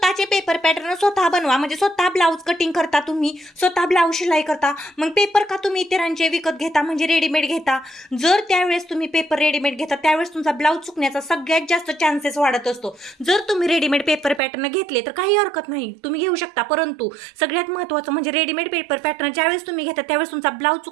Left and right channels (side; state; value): left; drops out; at 14.4 s